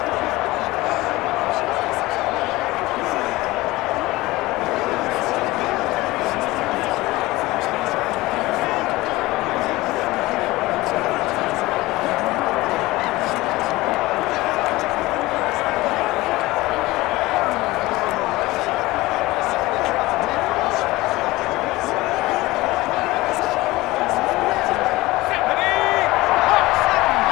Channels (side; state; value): right; quieter; 19.6 dB